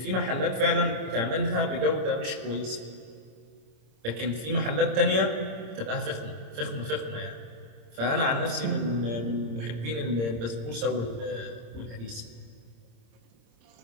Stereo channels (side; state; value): left; late; 26 ms